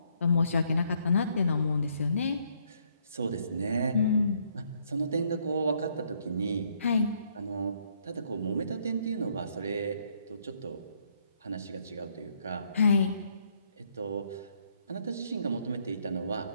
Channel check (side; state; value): both; inverted; correlation -0.70